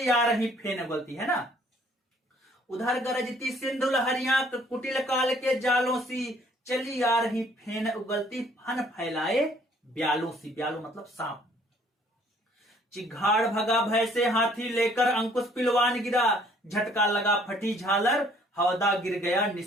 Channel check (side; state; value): both; normal; correlation 0.60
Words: आ रही फेन उगलती है ना, उधर गरजती सिंधु लहरियां कुटिल काल के जालों सी, चली आ रही फेन उगलती फन फैलाए ब्यालों सी। ब्यालों मतलब सांप। चिघाड़ भगा भय से हाथी लेकर अंकुश पिलवान गिरा, झटका लगा फटी झालर हौदा गिर गया